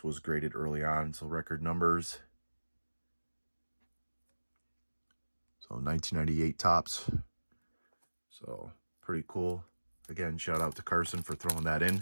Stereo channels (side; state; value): both; inverted; correlation -1.00